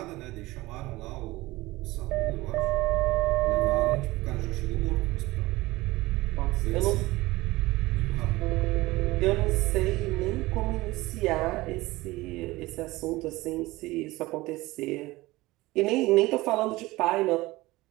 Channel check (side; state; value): left; quieter; 19.7 dB